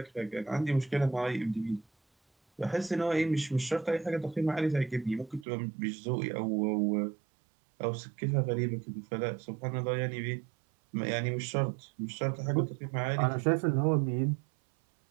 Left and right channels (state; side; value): drops out; left; at 5.5 s